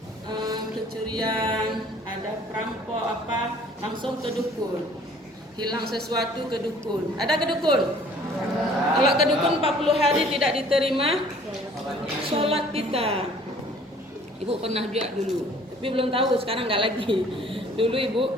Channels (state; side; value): normal; both; correlation 0.54